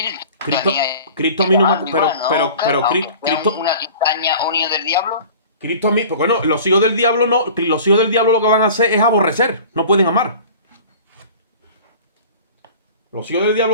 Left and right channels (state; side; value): inverted; both; correlation -0.43